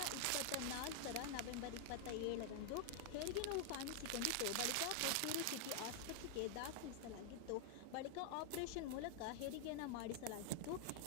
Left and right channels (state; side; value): different; both; correlation 0.00